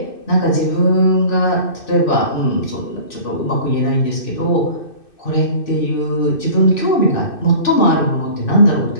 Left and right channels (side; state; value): right; late; 2.6 ms